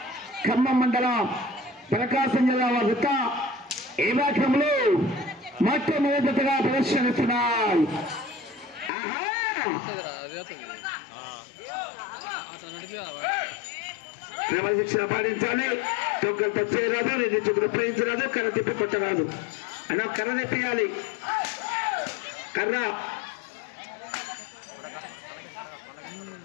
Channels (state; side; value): drops out; right; at 8.9 s